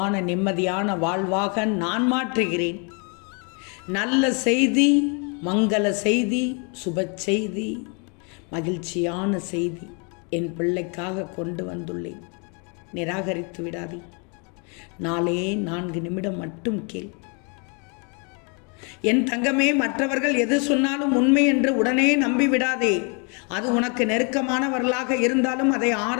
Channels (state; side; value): quieter; right; 35.7 dB